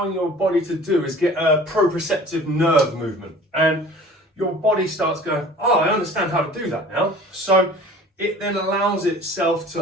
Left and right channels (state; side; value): normal; both; correlation 0.45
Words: your body to do is get a proprioceptive nerve movement, and your body starts going, oh, I understand how to do that now. So it then allows itself